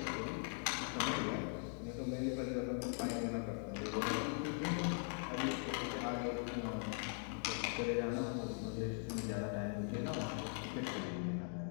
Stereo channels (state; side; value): silent; right; 50 dB below the other